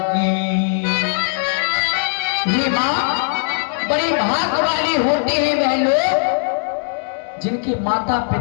ये माँ, बड़े भाग वाले होते हैं वह लोग जिनके माता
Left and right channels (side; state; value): right; silent; digital silence